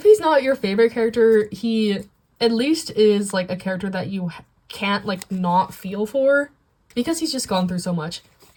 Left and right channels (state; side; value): identical; both; correlation 1.00